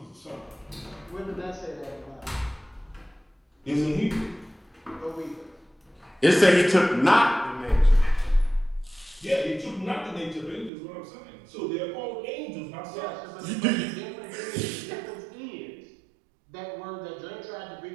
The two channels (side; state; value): left; drops out; at 10.7 s